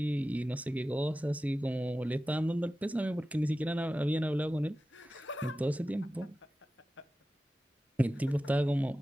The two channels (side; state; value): both; normal; correlation 0.95